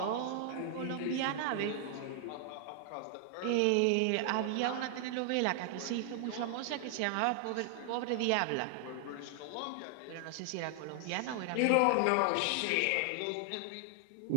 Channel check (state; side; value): different; both; correlation 0.00